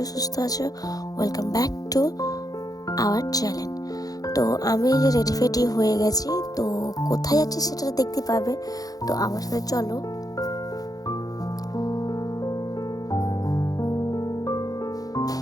সুস্থ আছো। Welcome back to our channel. তো আমি যে রেডি ফেডি হয়ে গেছি, তো কোথায় যাচ্ছি সেটা দেখতে পাবে। তো আমার সাথে চলো।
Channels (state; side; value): late; right; 0.18 ms